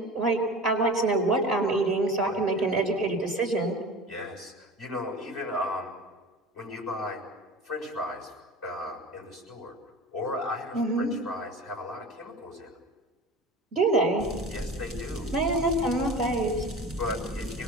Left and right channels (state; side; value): normal; both; correlation 0.35